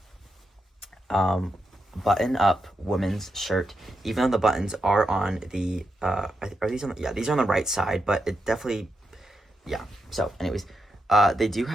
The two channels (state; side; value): normal; both; correlation 0.85